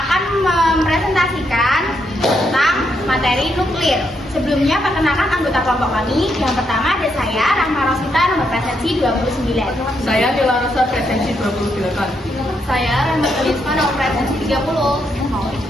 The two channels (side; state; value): both; normal; correlation 0.78